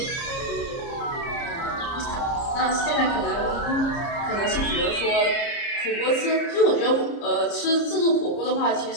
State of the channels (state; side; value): late; right; 30 ms